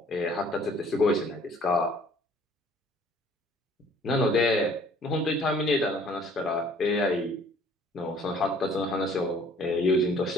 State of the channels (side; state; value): both; normal; correlation 0.56